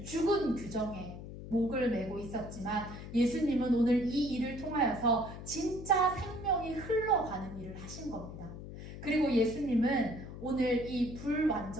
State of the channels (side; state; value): left; noise; hum, 11 dB below the sound